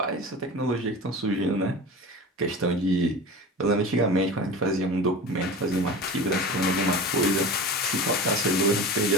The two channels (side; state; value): both; normal; correlation 0.32